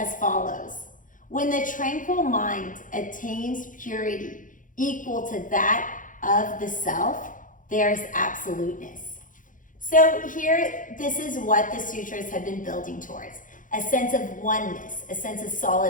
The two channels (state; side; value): late; right; 0.38 ms